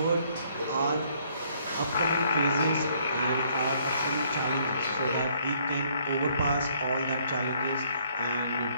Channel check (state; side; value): inverted; both; correlation -0.65